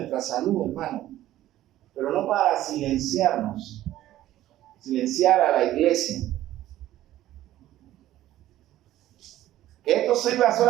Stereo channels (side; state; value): left; quieter; 14.0 dB